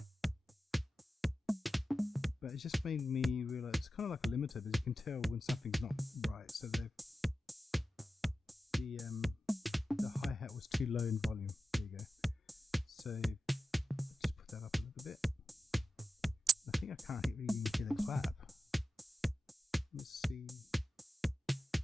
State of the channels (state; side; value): normal; both; correlation 0.92